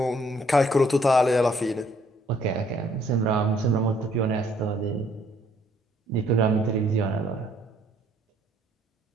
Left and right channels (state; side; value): normal; both; correlation 0.65